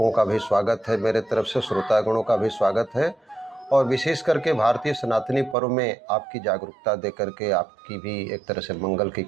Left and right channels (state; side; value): drops out; left; at 5.6 s